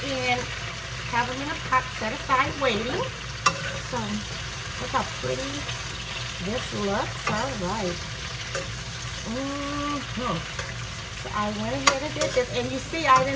and have them in a pot set aside waiting. So look how pretty this looks. All right. So I went ahead and did this, and you see I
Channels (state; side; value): identical; both; correlation 1.00